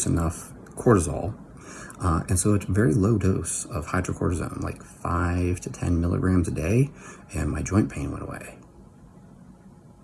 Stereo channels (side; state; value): both; identical; correlation 1.00